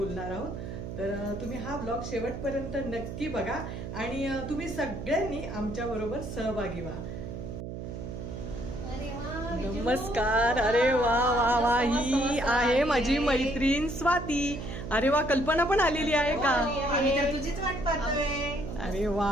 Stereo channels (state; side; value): noise; right; hum, 8 dB below the sound